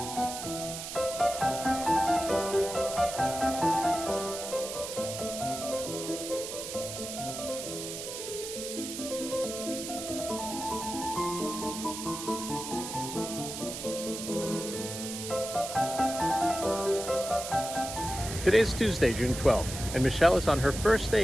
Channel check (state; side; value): noise; right; hiss, 7 dB below the sound